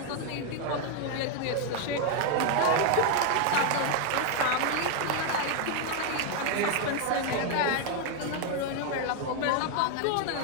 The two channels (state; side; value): different; both; correlation 0.01